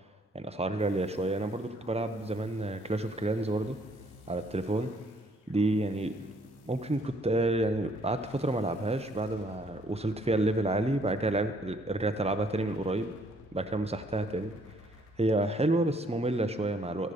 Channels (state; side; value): normal; both; correlation 0.64